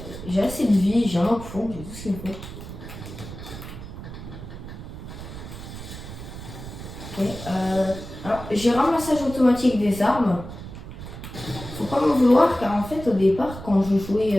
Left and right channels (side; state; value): right; noise; rumble, 11 dB below the sound